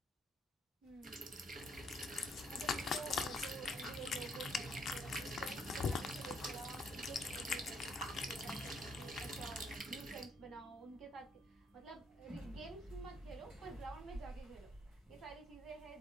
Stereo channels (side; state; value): both; normal; correlation 0.69